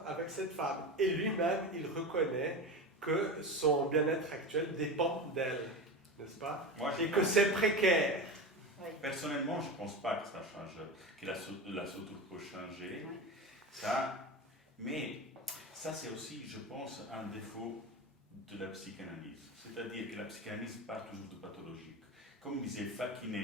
avec cette femme. Et lui-même, il reconnaît que son bien-être actuel dépend d'elle, n'est-ce pas? Et que c'est précaire. Oui. Personnellement, je ne pense pas que ça change, que la structure peut changer. Oui. Ça, mais ça, c'est aussi, je pense, un défaut de la psychanalyse. C'est-à-dire que la psychanalyse part toujours de pathologique. Comme disait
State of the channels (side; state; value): both; normal; correlation 0.24